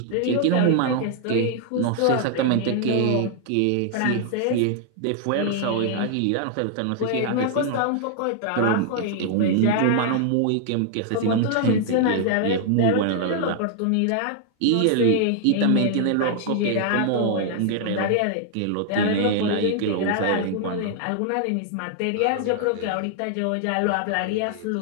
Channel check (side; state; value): both; different; correlation 0.00